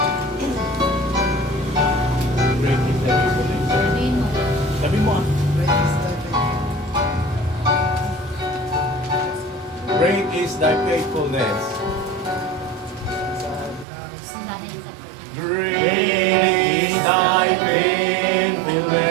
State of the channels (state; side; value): drops out; left; at 13.9 s